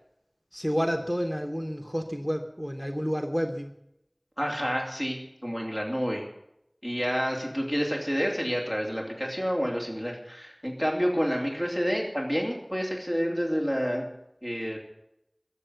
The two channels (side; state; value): both; identical; correlation 1.00